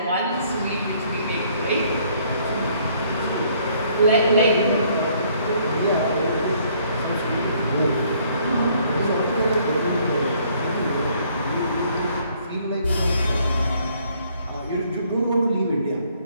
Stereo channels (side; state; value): both; inverted; correlation -0.64